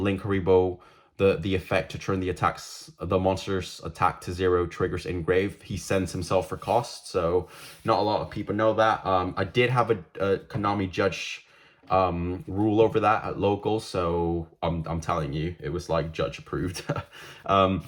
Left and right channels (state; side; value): identical; both; correlation 1.00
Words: reboot the effect to turn the monster's attack to 0 triggers in grave. He sends himself for cost, so not a lot of people know that. I did have a Konami judge rule over that at local, so I'm telling you, it was like judge approved.